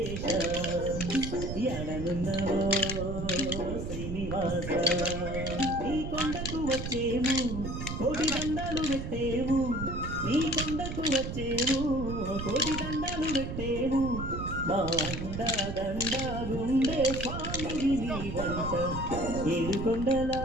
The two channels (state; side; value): noise; right; rumble, 5 dB below the sound